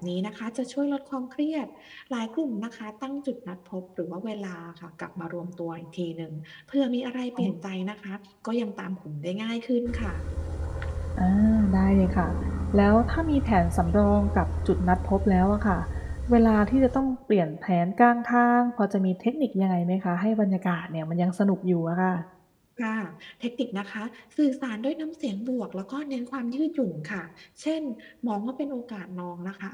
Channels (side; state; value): both; identical; correlation 1.00